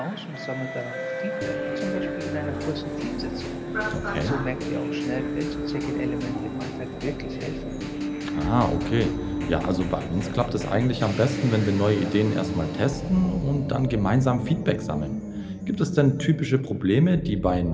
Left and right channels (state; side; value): identical; both; correlation 1.00